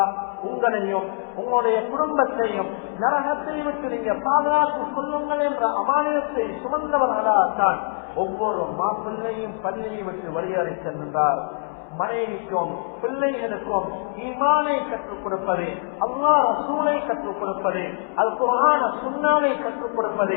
உங்களையும் உங்களுடைய குடும்பத்தையும் நரகத்தை விட்டு நீங்க பாதுகாத்துக் கொள்ளுங்கள் என்ற அமானிதத்தை சுமந்தவர்களாகத்தான் ஒவ்வொரு மாப்பிள்ளையும் பள்ளியை விட்டு வெளியேறி செல்கின்றார். மனைவிக்கும் பிள்ளைகளுக்கும் ஈமானை கற்றுக் கொடுப்பது, அல்லாஹ் ரசூலை கற்றுக் கொடுப்பது, அல் குர்ஆன சுன்னாவை கற்றுக்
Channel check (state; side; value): silent; right; 63 dB below the other